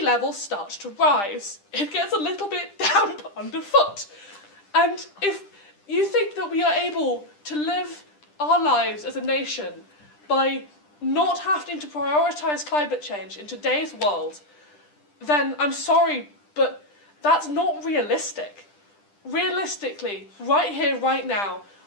levels start to rise. It gets a little bit damp underfoot. And if you think that we are able to live our lives as a nation by not having to prioritise climate change in today's world, then I'm sorry, but that's not realistic. Realistically, right here, right now,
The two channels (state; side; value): late; right; 10 ms